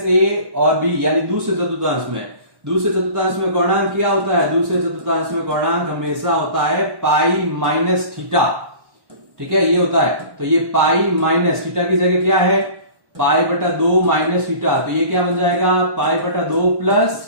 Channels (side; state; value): left; late; 1.1 ms